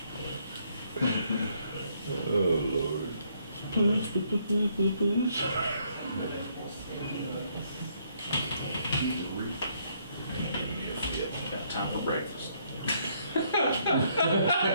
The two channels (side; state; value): both; inverted; correlation -0.70